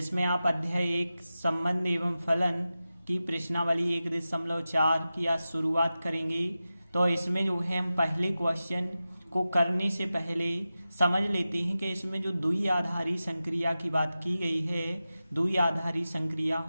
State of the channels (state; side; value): inverted; both; correlation -0.94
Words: आप अध्याय 1 संबंध एवं फलन की प्रश्नावली 1.4 की आज शुरुआत करेंगे। तो इसमें जो है हम पहले क्वेश्चन को करने से पहले समझ लेते हैं कि इसमें जो द्विआधारी संक्रिया की बात की गई है, द्विआधारी संक्रिया